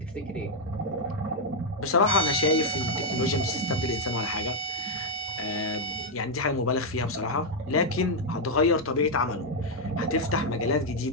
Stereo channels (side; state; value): left; noise; hum, 27 dB below the sound